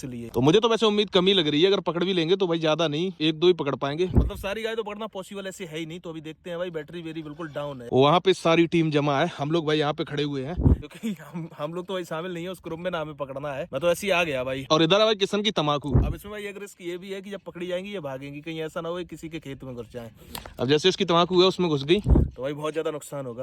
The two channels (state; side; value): identical; both; correlation 1.00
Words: तो मुझे तो वैसे उम्मीद कमी लग रही है, अगर पकड़ भी लेंगे तो भाई ज्यादा नहीं, 1-2 ही पकड़ पाएंगे। मतलब सारी गाय तो पकड़ना पॉसिबल ऐसे है ही नहीं। तो अभी देखते हैं भाई, बैटरी बिल्कुल डाउन है। वहाँ पे सारी टीम जमा है, हम लोग भाई यहाँ पे खड़े हुए हैं, क्योंकि हम लोग तो भाई शामिल नहीं है उस ग्रुप में, ना हमें पकड़ना है। मैं तो ऐसे ही आ गया भाई। और इधर है भाई किशन की तम्बाकू। अब इसमें भाई एक रिस्क ये भी है कि जब पकड़ी जाएंगी ये भागेंगी, कहीं ऐसा ना हो किसी के खेत में घुस जाए। अब जैसे इसकी तम्बाकू है उसमें घुस गई तो भाई बहुत ज्यादा नुकसान